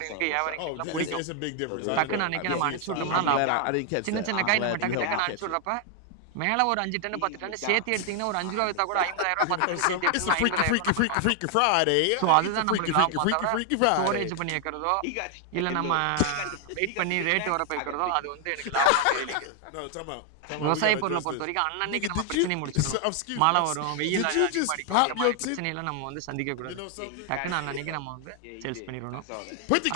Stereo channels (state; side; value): different; both; correlation 0.00